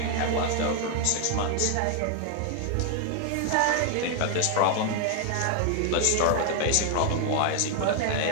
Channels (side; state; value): both; different; correlation 0.00